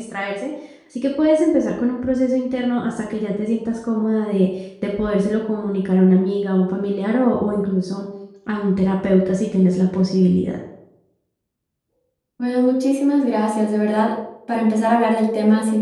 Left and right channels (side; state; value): both; identical; correlation 1.00